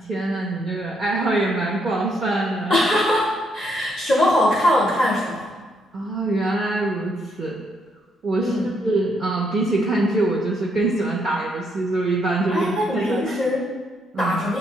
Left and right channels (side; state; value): both; normal; correlation 0.74